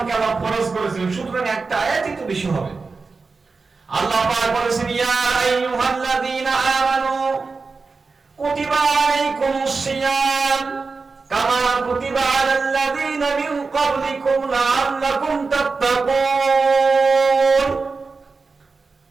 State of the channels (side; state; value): left; quieter; 4.3 dB